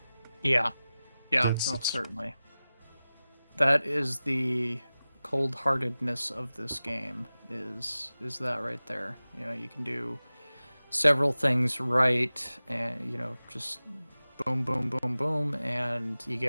Yeah, That's no, it. certainly. That is the cold-heartedness of this game. Is that right there? You can do several things right, and just boom, boom, boom, boom, and you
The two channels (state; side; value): inverted; both; correlation -0.96